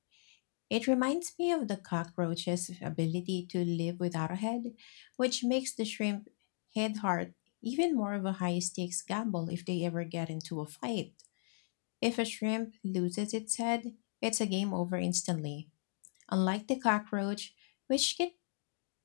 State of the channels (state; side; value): silent; right; digital silence